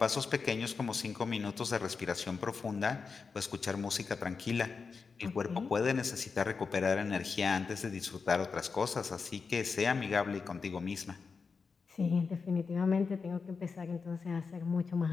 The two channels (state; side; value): quieter; right; 5.1 dB